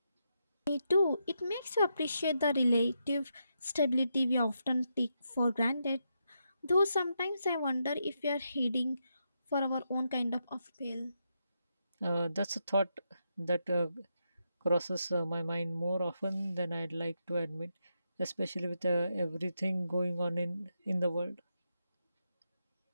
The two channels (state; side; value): inverted; both; correlation -0.83